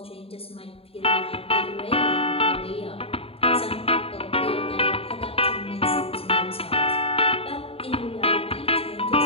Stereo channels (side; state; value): right; late; 0.28 ms